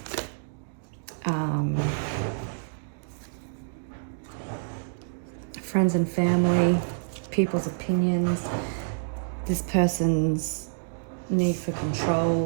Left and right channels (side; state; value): left; silent; digital silence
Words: friends and family, people's opinions, this person's need for